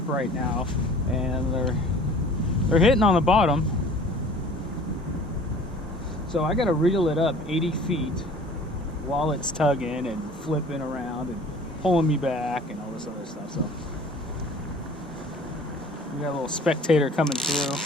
right now, and they're hitting on the bottom. So I gotta reel it up 80 feet while it's tugging and flipping around and pulling me back and all this other stuff. So we got a little spectator coming through.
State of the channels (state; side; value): normal; both; correlation 0.47